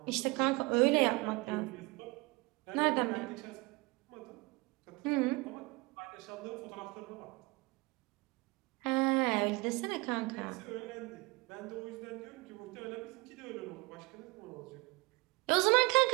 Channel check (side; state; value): left; quieter; 24.6 dB